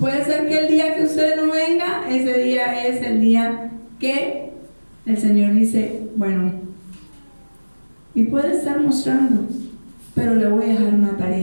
ser que el día que usted no venga, ese día es el día que el Señor dice, bueno, y puede estar mostrando, pero le voy a dejar una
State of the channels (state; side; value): inverted; both; correlation -1.00